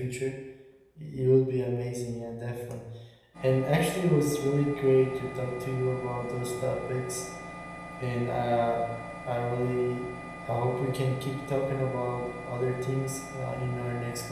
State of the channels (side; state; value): both; identical; correlation 1.00